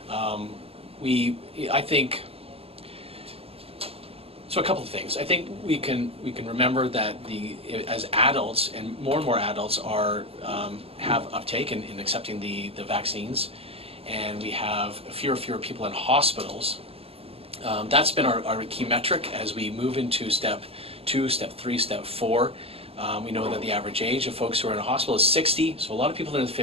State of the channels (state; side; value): late; left; 0.28 ms